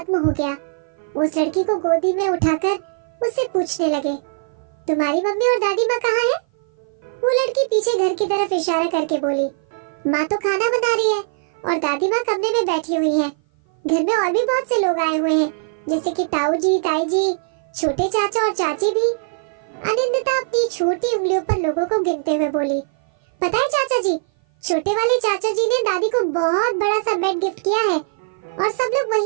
हो गया। उस लड़की को गोदी में उठाकर उससे पूछने लगे, तुम्हारी मम्मी और दादी माँ कहाँ है? वो लड़की पीछे घर की तरफ इशारा करके बोली, माँ तो खाना बना रही है और दादी माँ कमरे में बैठी हुई है। घर में और भी बहुत से लोग आए हुए हैं, जैसे कि ताऊ जी, ताई जी, छोटे चाचा और चाची भी। आनंदिता अपनी छोटी उंगलियों पर लोगों को गिनते हुए बोली, पता है चाचा जी, छोटे वाले चाचा जी ने दादी को बहुत बड़ा सा बेड गिफ्ट किया है और सब लोग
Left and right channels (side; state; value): left; silent; 56 dB below the other